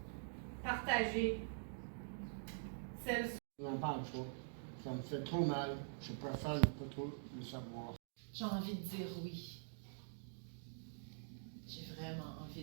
partagée, celle. Je n'en parle pas. Ça me fait trop mal. Je préfère ne pas trop le savoir. J'ai envie de dire oui. J'ai vraiment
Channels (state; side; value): silent; left; digital silence